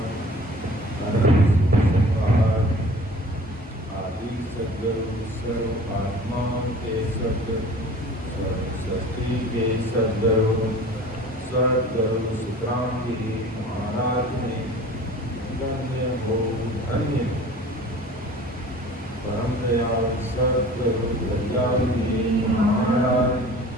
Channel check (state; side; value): normal; both; correlation 0.44